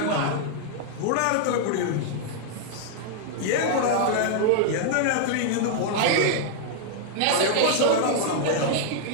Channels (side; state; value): both; different; correlation -0.01